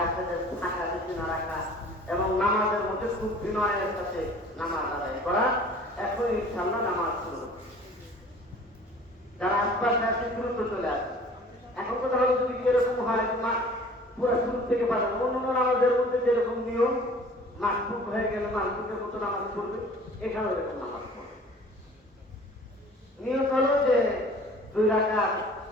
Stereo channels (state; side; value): normal; both; correlation 0.48